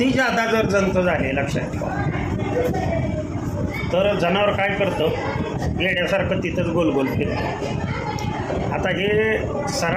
जादा जर जंत झाले, लक्षात ठेवा, तर जनावर काय करतं, येड्यासारखं तिथंच गोल गोल फिरतं. आता हे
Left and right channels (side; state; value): both; identical; correlation 1.00